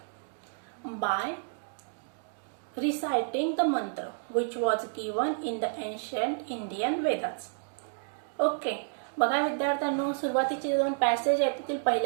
by reciting the mantra which was given in the ancient Indian Vedas. Okay, बघा विद्यार्थ्यांनो, सुरुवातीचे दोन passage आहेत त्यातील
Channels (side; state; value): left; silent; digital silence